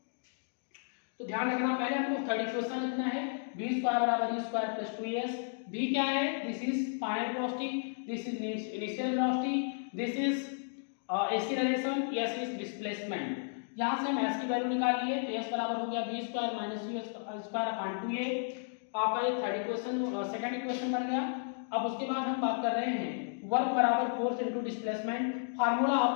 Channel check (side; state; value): right; silent; digital silence